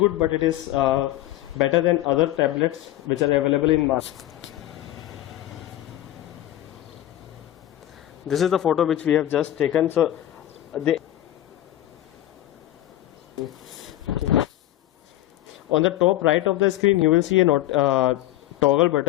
but it is better than other tablets which are available in market. This is the photo which we have just taken. So On the top right of the screen, you will see a toggle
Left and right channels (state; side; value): quieter; right; 14.1 dB